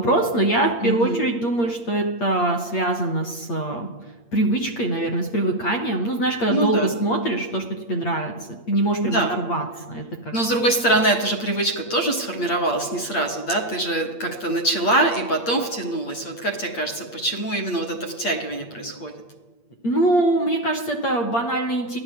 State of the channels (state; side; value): late; right; 8.6 ms